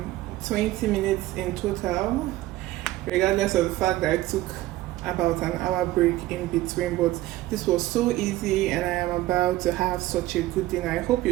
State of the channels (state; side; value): quieter; left; 16.6 dB